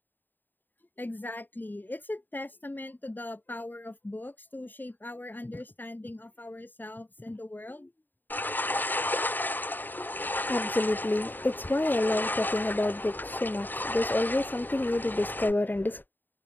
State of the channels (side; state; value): right; late; 0.091 ms